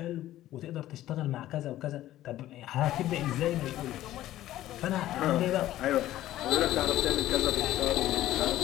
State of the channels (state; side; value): quieter; right; 14.1 dB